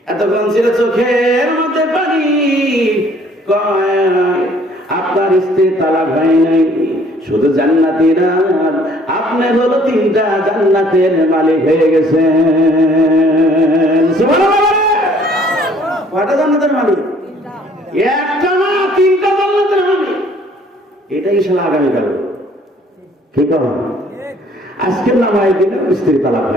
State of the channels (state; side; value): normal; both; correlation 0.59